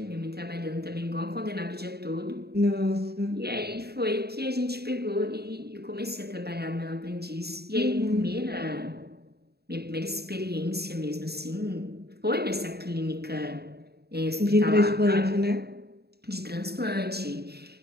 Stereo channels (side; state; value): left; late; 0.47 ms